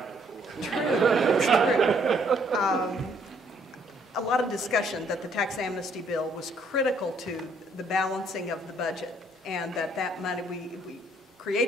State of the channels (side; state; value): both; normal; correlation 0.66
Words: A lot of discussion that the tax amnesty bill was critical to the balancing of the budget, and that money, we